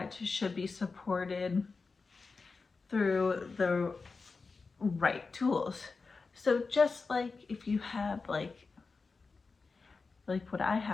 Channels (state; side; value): quieter; right; 4.3 dB